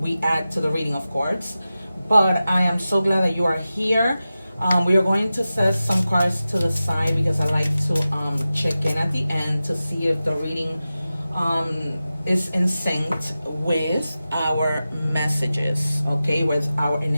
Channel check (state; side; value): inverted; both; correlation -0.94